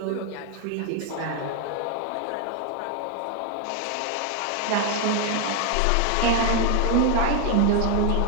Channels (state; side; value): different; both; correlation 0.01